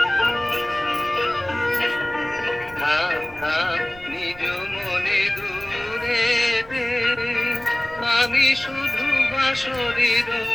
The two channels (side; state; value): right; noise; rumble, 22 dB below the sound